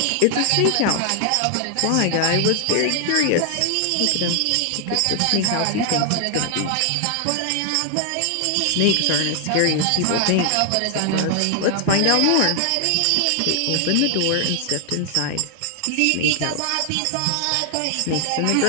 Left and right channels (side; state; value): both; different; correlation 0.00